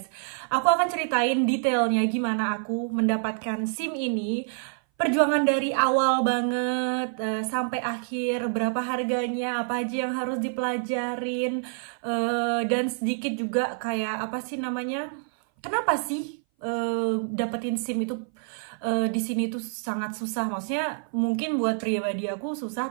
Aku akan ceritain detailnya gimana aku mendapatkan SIM ini, perjuangan dari awal banget sampai akhir, berapa harganya, apa aja yang harus dipelajarin, dan sedikit juga kayak apa sih namanya, kenapa sih dapetin SIM itu di sini tuh sangat susah. Maksudnya mungkin buat pribadi aku susah,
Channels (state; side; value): silent; left; 58 dB below the other